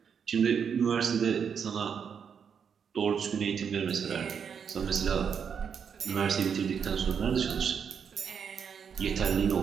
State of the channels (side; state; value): left; quieter; 7.0 dB